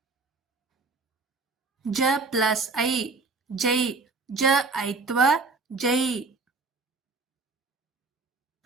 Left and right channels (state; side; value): quieter; left; 3.8 dB